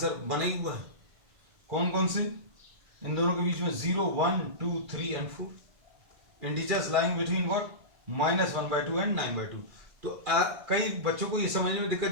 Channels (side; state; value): left; late; 2.3 ms